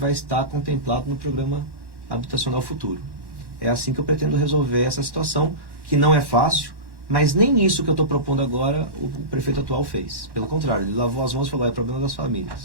estar contemplado no programa habitacional futuro. É assim que eu pretendo resolver essa situação, que não é fácil, mas nem isso que eu estou propondo agora o prefeito atual fez. Pelo contrário, ele lavou as mãos e falou: é problema das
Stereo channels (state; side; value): late; left; 1.1 ms